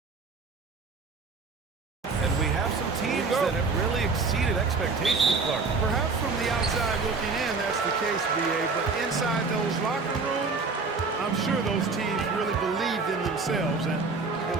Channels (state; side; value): quieter; left; 4.3 dB